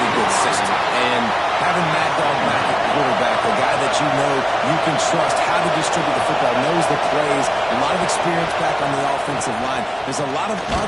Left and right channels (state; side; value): identical; both; correlation 1.00